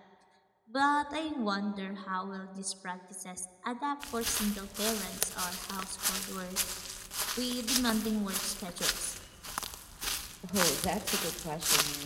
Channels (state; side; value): identical; both; correlation 1.00